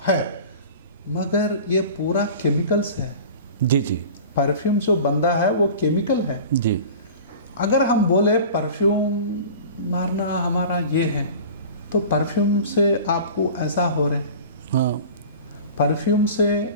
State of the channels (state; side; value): inverted; both; correlation -0.38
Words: है, मगर ये पूरा केमिकल्स है। जी जी परफ्यूम जो बंदा है वो केमिकल है। जी अगर हम बोले परफ्यूम मारना हमारा ये है, तो परफ्यूम से आपको ऐसा हो रहे, हाँ परफ्यूम से